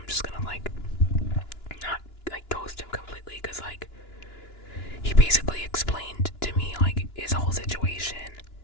just gonna, like, not, like, ghost him completely, because, like, he basically explained to me, like, his whole situation,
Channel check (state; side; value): late; right; 2.9 ms